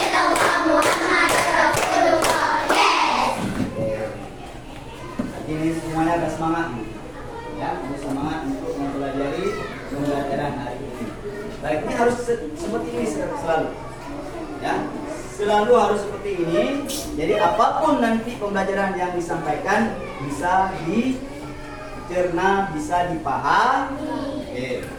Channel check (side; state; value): both; identical; correlation 1.00